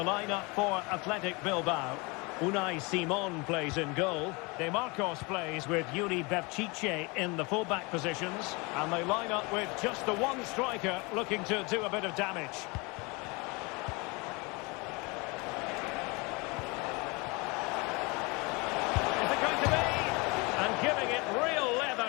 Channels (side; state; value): right; quieter; 27.6 dB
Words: lineup for Athletic Bilbao. Unai Simon plays in goal. De Marcos plays with Yuri Berchiche in the fullback positions. And they line up with just the one striker looking to do a bit of damage. Is it going to be? And giving it real